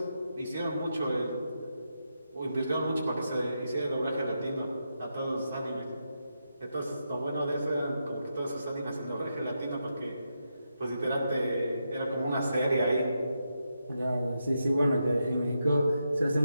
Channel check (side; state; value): both; inverted; correlation -0.85